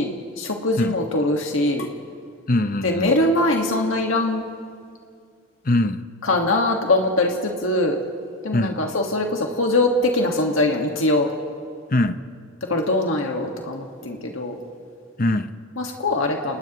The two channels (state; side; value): normal; both; correlation 0.20